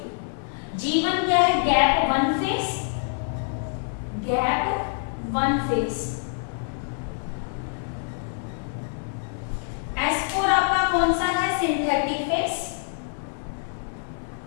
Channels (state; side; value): silent; right; 57 dB below the other